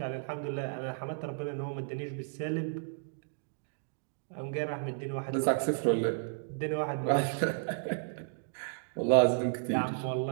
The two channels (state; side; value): silent; left; digital silence